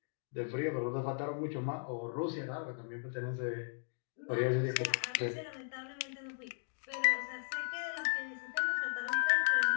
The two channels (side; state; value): right; silent; digital silence